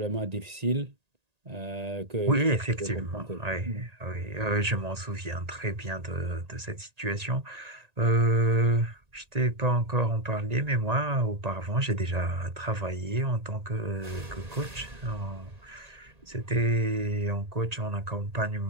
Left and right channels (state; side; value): late; left; 1.8 ms